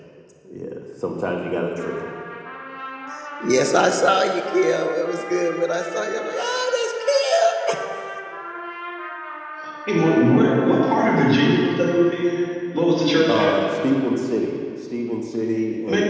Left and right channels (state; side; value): identical; both; correlation 1.00